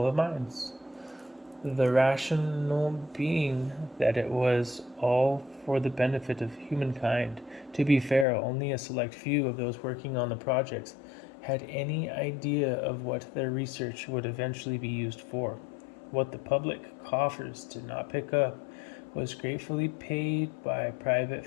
of minds. The rationale being that it was all for the benefit of humankind. To be fair, only a select few of those working on the projects had any idea of what their research would eventually be used for. What the public coffers did not pick up was gratefully paid by private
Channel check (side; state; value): right; drops out; at 8.2 s